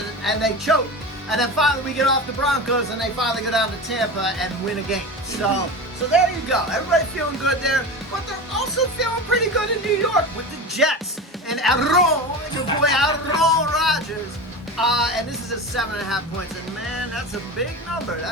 and they choked. And then finally we get off the Broncos, and they finally go down to Tampa and win a game. So there you go. Everybody feeling good there, but they're also feeling pretty good in New York with the Jets and your boy Aaron Rodgers. And this is a 7.5 points, and man, that's a big number.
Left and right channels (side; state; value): both; normal; correlation 0.27